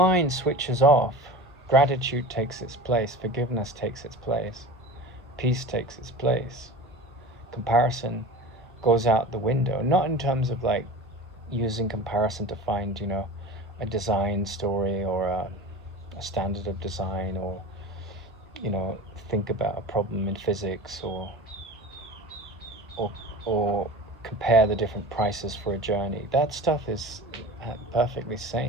switches off, gratitude takes its place, forgiveness takes its place, peace takes its place. Comparison goes out the window, not in terms of like using comparison to find, you know, a design story or a standard of design, or, you know, think about a problem in physics, or compare the different prices for a journey. That stuff is perfectly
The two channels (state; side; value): normal; both; correlation 0.34